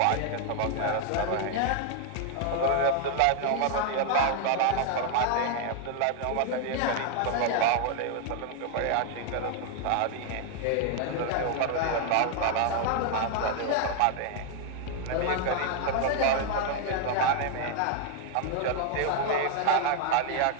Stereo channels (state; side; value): different; both; correlation 0.00